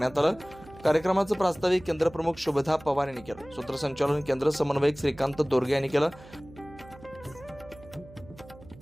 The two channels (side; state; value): right; noise; hum, 20 dB below the sound